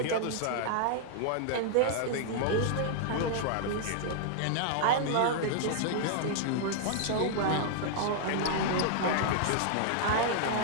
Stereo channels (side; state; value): both; different; correlation -0.01